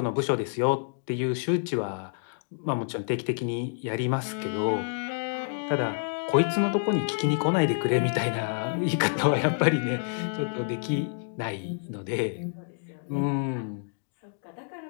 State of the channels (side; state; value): right; silent; digital silence